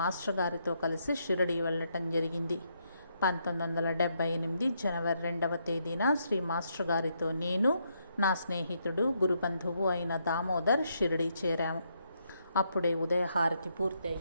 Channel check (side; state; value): both; inverted; correlation -0.76